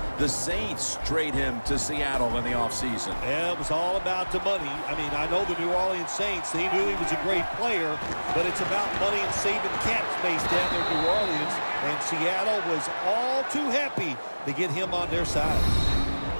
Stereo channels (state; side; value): inverted; both; correlation -1.00